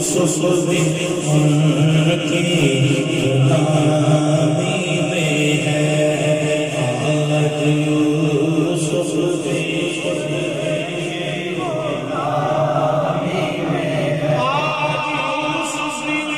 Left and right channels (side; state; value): both; identical; correlation 1.00